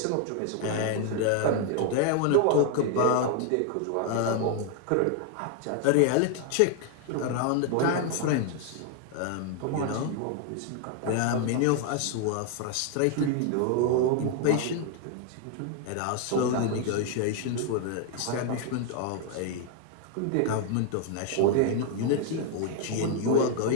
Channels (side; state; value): both; different; correlation 0.00